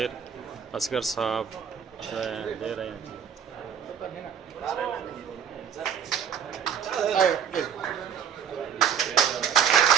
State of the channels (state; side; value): quieter; left; 8.0 dB